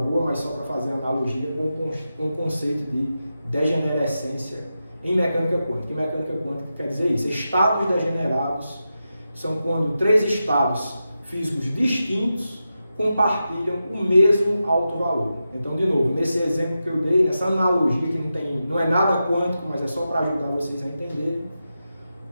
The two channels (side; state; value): both; inverted; correlation -0.90